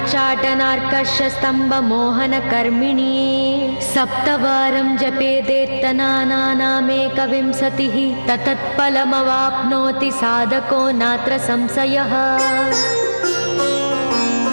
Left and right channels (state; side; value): inverted; both; correlation -1.00